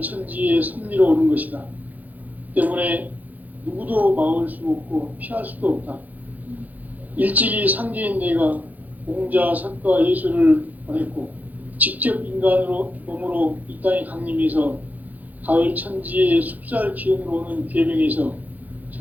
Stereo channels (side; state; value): left; late; 0.081 ms